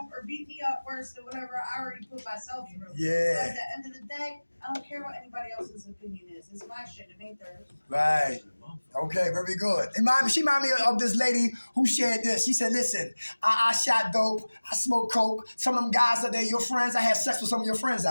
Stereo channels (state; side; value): inverted; both; correlation -1.00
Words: or beat me up worse than whatever I already put myself through. Yeah. So at the end of the day, I don't care what anybody else's opinion is. It's my shit. It ain't theirs. Right. Okay, very good. She reminded me of this lady who shared this. She said, listen, I shot dope. I smoked coke. Some of them guys out there, your friends, I had sex with some of your friends